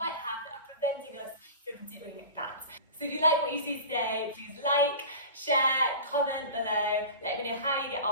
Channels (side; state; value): both; inverted; correlation -0.35